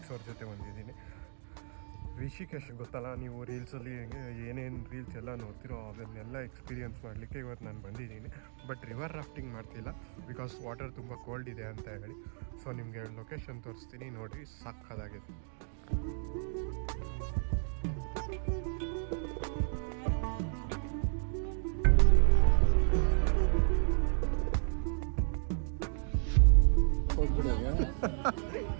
ಅವ್ರ ಜೊತೆ ಬಂದಿದ್ದೀನಿ. ರಿಷಿಕೇಶ್ ಗೊತ್ತಲ್ಲ, ನೀವು ರೀಲ್ಸಲ್ಲಿ ಏನೇನು ರೀಲ್ಸ್ ಎಲ್ಲ ನೋಡ್ತಿರೋ ಅದನ್ನೆಲ್ಲ ಎಕ್ಸ್ಪೀರಿಯೆನ್ಸ್ ಮಾಡಲಿಕ್ಕೆ ಇವತ್ತು ನಾನು ಬಂದಿದ್ದೀನಿ. ಬಟ್ ರಿವರ್ ರಾಫ್ಟಿಂಗ್ ಮಾಡ್ತಿಲ್ಲ, ಬಿಕಾಸ್ ವಾಟರ್ ತುಂಬ ಕೋಲ್ಡ್ ಇದೆ ಅಂತ ಹೇಳಿ. ಸೊ ನಿಮಗೆ ಲೊಕೇಶನ್ ತೋರಿಸ್ತೀನಿ, ನೋಡಿರಿ, ಸಾಕಾಗಿದೆ.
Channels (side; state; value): left; silent; 55 dB below the other